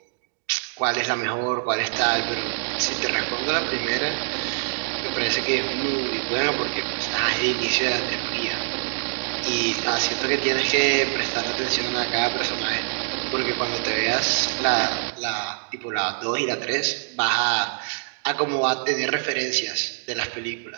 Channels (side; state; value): left; silent; digital silence